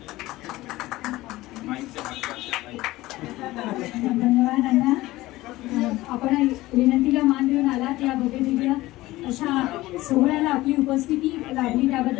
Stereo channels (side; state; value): right; quieter; 18.0 dB